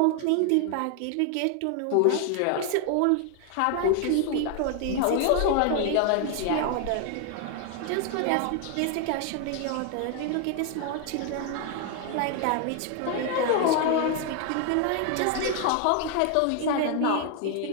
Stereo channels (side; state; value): both; different; correlation 0.00